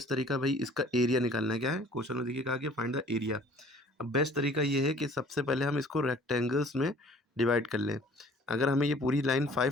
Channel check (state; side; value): normal; both; correlation 0.53